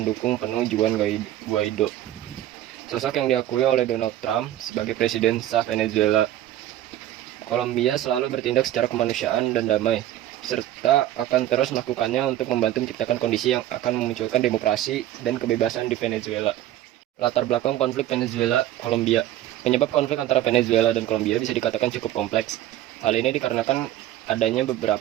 penuh Juan Guaido, sosok yang diakui oleh Donald Trump sebagai presiden sah Venezuela. Kolombia selalu bertindak secara kemanusiaan dan damai, serta akan terus melakukannya untuk membantu menciptakan kondisi yang akan memunculkan demokrasi dan kebebasan di Venezuela. Latar belakang konflik Venezuela-Kolombia. Penyebab konflik antara Venezuela dan Kolombia bisa dikatakan cukup kompleks. Hal ini dikarenakan adanya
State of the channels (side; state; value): left; quieter; 13.2 dB